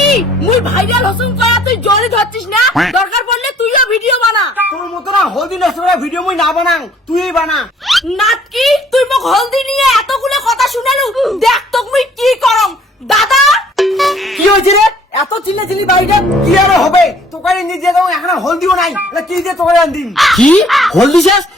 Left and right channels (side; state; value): both; normal; correlation 0.58